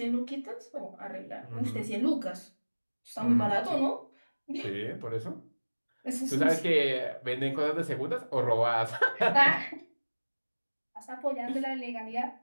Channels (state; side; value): inverted; both; correlation -1.00